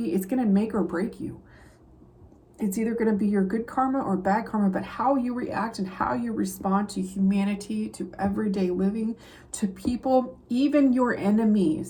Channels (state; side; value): identical; both; correlation 1.00